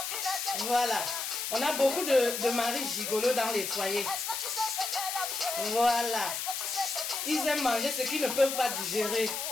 Voilà. On a beaucoup de maris gigolos dans les foyers. Voilà. Ils aiment manger ce qu'ils ne peuvent pas digérer.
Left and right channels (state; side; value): noise; left; hiss, 3 dB below the sound